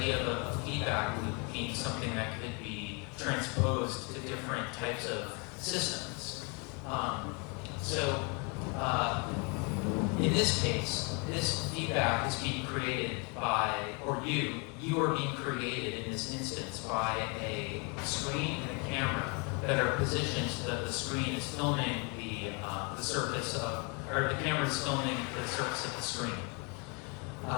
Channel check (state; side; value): quieter; right; 32.9 dB